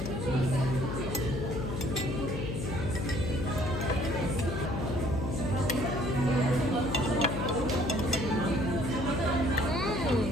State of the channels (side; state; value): left; noise; hum, 3 dB below the sound